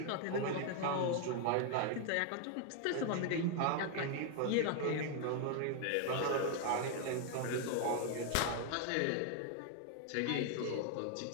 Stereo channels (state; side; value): different; both; correlation 0.00